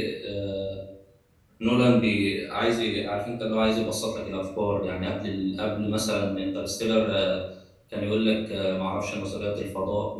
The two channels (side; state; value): both; identical; correlation 1.00